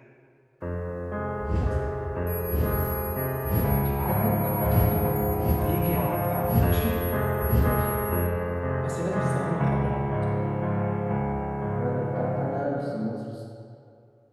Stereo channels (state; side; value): identical; both; correlation 1.00